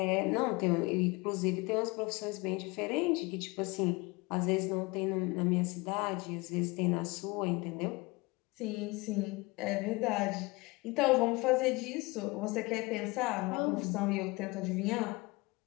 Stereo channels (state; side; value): quieter; right; 24.4 dB